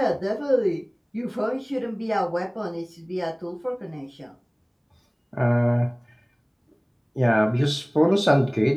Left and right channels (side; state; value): both; identical; correlation 1.00